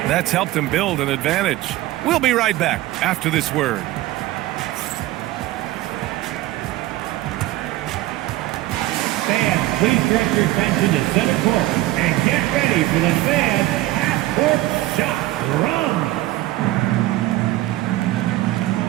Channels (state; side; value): quieter; left; 16.7 dB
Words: That's helped them build an advantage. We'll be right back after this word. Fans, please direct your attention to center court and get ready for the fan half-court shot run.